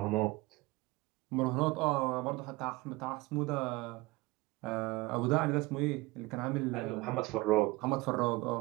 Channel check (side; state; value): left; quieter; 22.0 dB